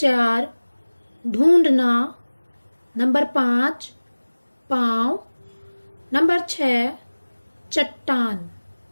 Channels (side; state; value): both; inverted; correlation -1.00